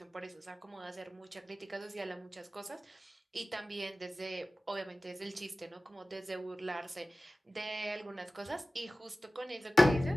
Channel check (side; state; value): both; normal; correlation 0.96